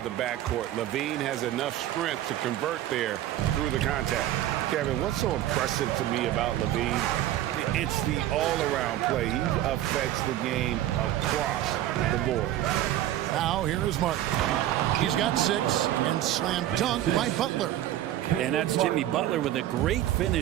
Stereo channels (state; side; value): quieter; left; 13.2 dB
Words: the backcourt. Levine has enough strength to convert there through the contact. Kevin, what's so impressive to me about Levine? It's the all-around play. He affects the game across the board. Now, here is Martin. He's got 6 and slam dunk by Butler. And that's Jimmy Butler with a great